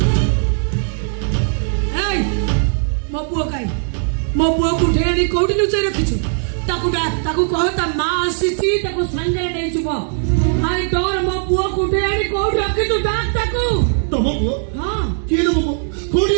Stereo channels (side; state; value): left; silent; 61 dB below the other